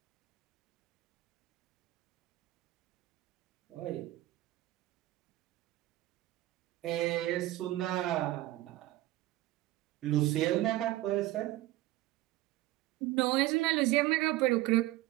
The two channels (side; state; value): left; quieter; 16.8 dB